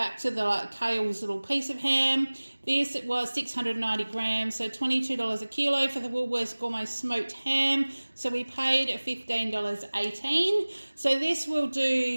to the Kale's little piece of ham. This was 690 grams, so $22 a kilo for the Woolworths Gourmet Smoked Ham. So we paid $15.18. So this will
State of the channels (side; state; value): both; inverted; correlation -1.00